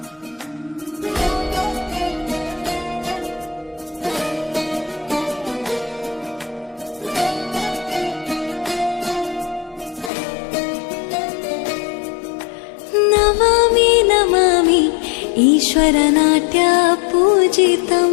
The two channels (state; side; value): drops out; right; at 10.1 s